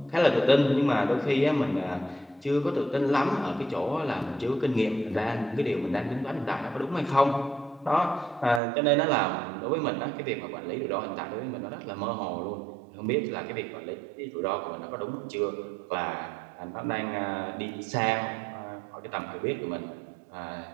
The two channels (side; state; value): left; drops out; at 8.6 s